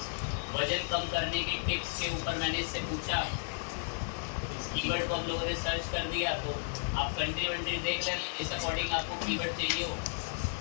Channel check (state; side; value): silent; right; digital silence